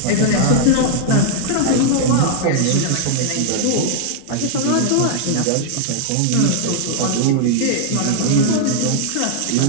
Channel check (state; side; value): different; both; correlation 0.00